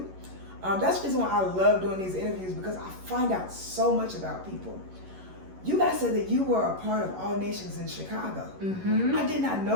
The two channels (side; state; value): left; late; 11 ms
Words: That's the reason why I love doing these interviews, because I find out so much about people. You guys said that you were a part of All Nations in Chicago. I did not